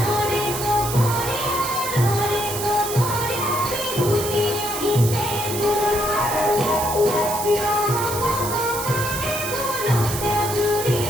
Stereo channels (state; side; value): noise; right; hiss, 6 dB below the sound